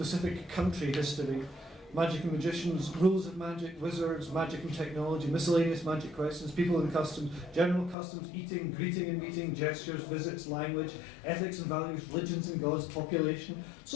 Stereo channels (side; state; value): right; drops out; at 8.0 s